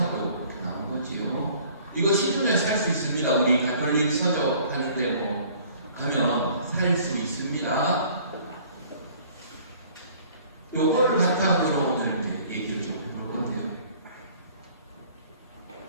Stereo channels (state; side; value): inverted; both; correlation -0.54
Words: 이렇게 나온 거지요. 이거 시중에 살 수 있습니다. 우리 가톨릭 서적 하는데 뭐 가면 살 수 있습니다. 요거를 바탕으로 오늘 이제 얘기를 좀 해볼 건데요.